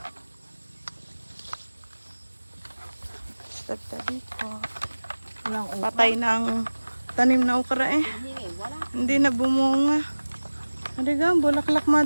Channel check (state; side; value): inverted; both; correlation -1.00